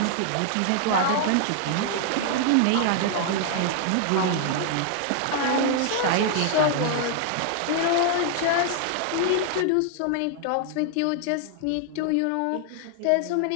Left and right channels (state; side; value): different; both; correlation 0.00